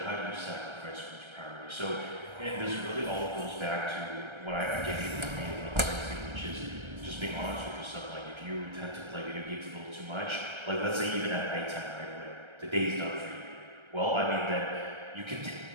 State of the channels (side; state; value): left; late; 1.3 ms